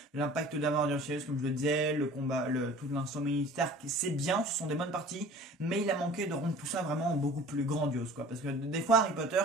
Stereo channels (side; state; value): both; normal; correlation 0.45